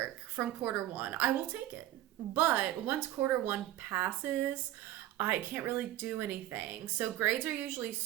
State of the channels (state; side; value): quieter; left; 13.9 dB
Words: from quarter 1, I will take it. But once quarter 1 passes, I can't really do anything. So grades are usually